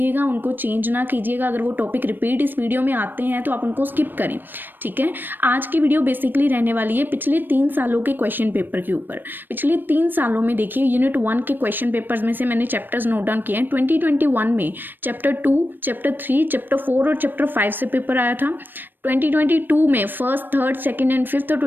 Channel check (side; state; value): left; late; 0.093 ms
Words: उनको चेंज ना कीजिएगा। अगर वो टॉपिक रिपीट इस वीडियो में आते हैं तो आप उनको स्किप करें, ठीक है। आज की वीडियो बेसिकली रहने वाली है पिछले 3 सालों के क्वेश्चन पेपर के ऊपर। पिछले 3 सालों में देखिए, यूनिट 1 के क्वेश्चन पेपर्स में से मैंने चैप्टर्स नोट डाउन किए हैं। 2021 में चैप्टर 2, चैप्टर 3, चैप्टर 4 और चैप्टर 5 से पेपर आया था। 2022 में first, third, second and fifth और